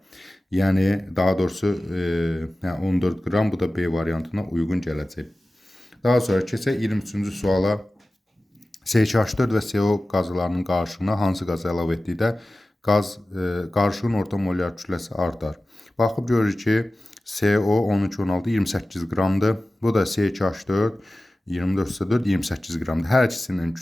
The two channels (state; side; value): normal; both; correlation 0.96